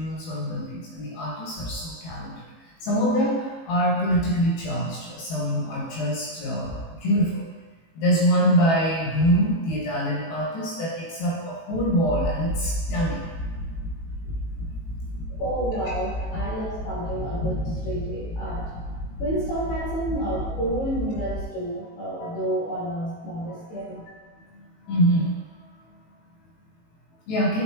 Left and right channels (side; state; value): right; late; 18 ms